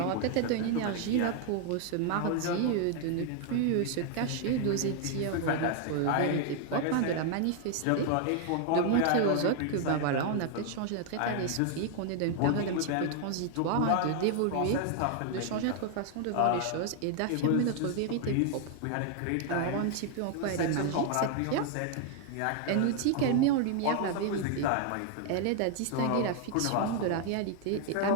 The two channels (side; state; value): both; different; correlation 0.00